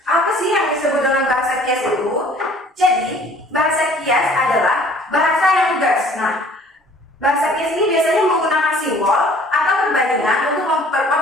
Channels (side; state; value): both; normal; correlation 0.53